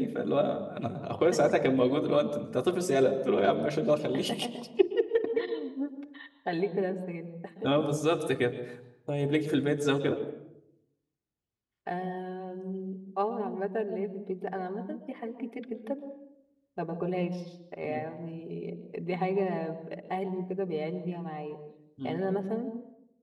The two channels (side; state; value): both; identical; correlation 1.00